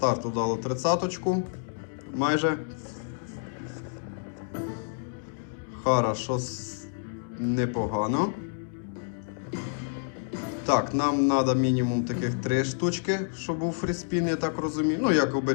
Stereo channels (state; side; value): silent; right; digital silence